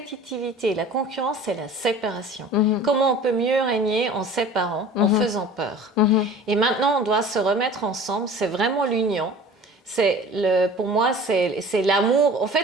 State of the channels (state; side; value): normal; both; correlation 0.42